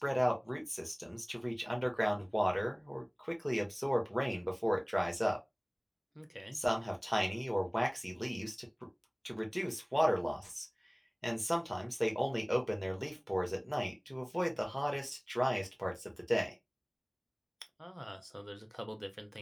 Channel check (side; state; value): both; identical; correlation 1.00